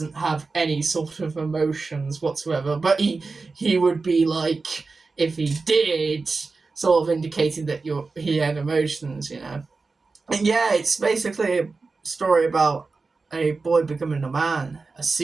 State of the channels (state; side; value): quieter; left; 4.0 dB